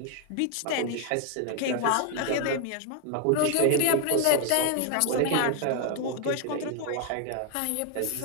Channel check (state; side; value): different; both; correlation 0.00